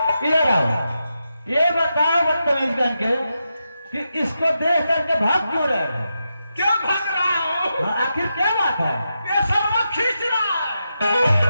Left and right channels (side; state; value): both; inverted; correlation -0.87